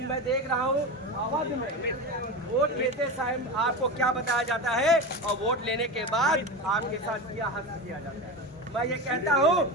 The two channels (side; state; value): both; normal; correlation 0.24